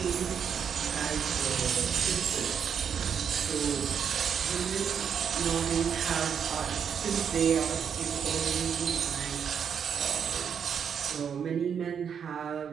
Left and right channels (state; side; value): quieter; left; 7.5 dB